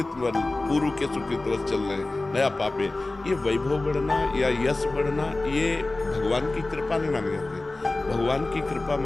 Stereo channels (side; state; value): right; quieter; 3.0 dB